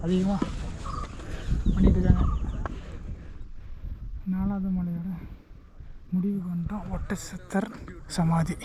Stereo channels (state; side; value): identical; both; correlation 1.00